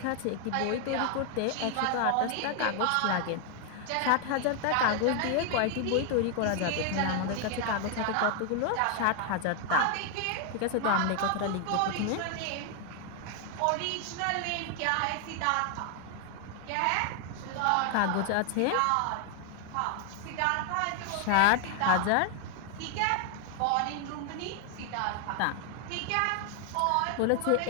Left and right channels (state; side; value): different; both; correlation 0.00